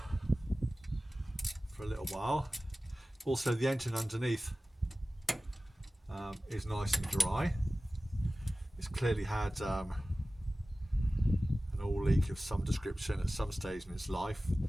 for a little while. Also, the engine underneath is nice and dry. It's clearly had an oil leak of some description at some stage in its life,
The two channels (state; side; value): normal; both; correlation 0.96